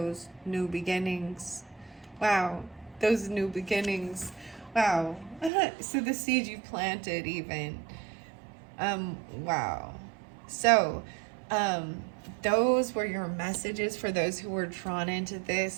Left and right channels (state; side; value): drops out; left; at 5.5 s